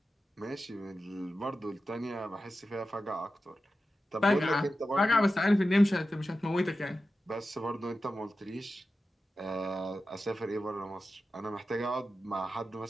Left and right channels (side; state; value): both; normal; correlation 0.92